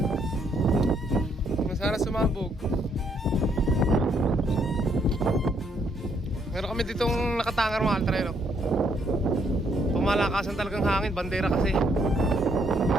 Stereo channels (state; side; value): normal; both; correlation 0.71